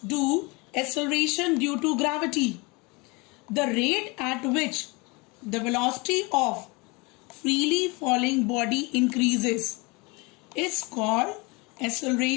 acceleration due to gravity. The rate at which the velocity of freely falling body increases is called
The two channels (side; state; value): right; quieter; 26.9 dB